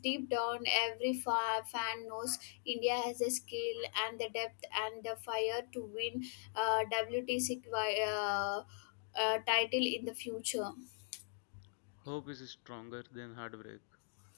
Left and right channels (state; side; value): silent; right; digital silence